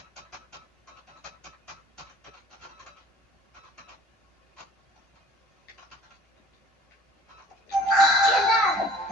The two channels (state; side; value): normal; both; correlation 0.48